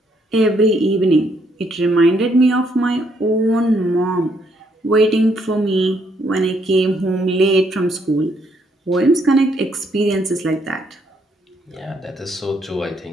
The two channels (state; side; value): normal; both; correlation 0.72